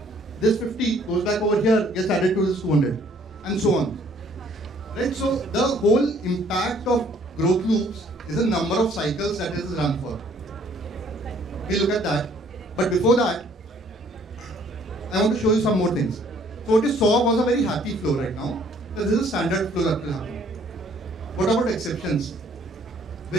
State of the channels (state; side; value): normal; both; correlation 0.61